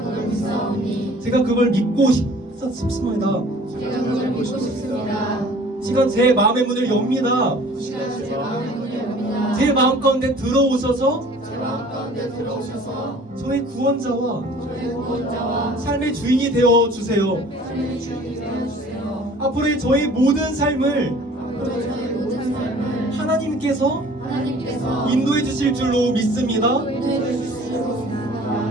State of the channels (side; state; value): both; normal; correlation 0.50